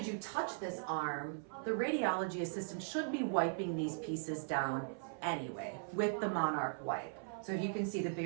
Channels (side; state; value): left; silent; 52 dB below the other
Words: you touch this arm, the radiology assistant should be wiping these pieces down anyway with the Monarch wipe. So you can see the